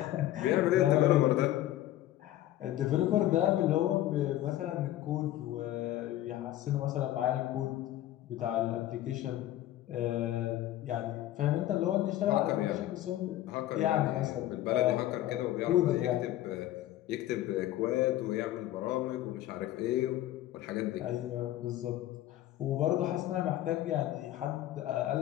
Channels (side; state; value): right; quieter; 13.9 dB